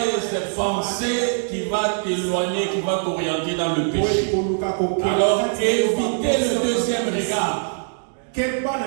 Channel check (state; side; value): silent; left; digital silence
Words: pensées qui vont t'éloigner, qui vont t'orienter dans le péché. Alors, évitez le deuxième regard. Que